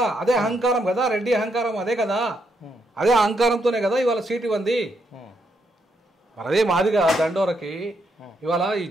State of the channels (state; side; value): normal; both; correlation 0.78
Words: అదే అహంకారం కదా, రెడ్డి అహంకారం అదే కదా. అదే అహంకారంతోనే కదా ఇవాళ సీట్ ఇవ్వండి. మరి అదే మాదిగా దండోరకి ఇవాళ ఈ